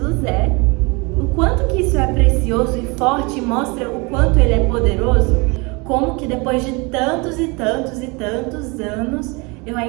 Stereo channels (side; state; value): left; quieter; 27.9 dB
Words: é. O quanto que isso é precioso e forte, mostra o quanto ele é poderoso. Como que depois de tantos anos, eu